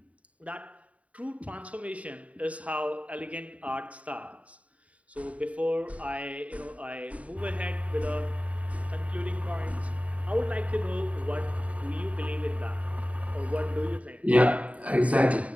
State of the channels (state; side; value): late; left; 0.067 ms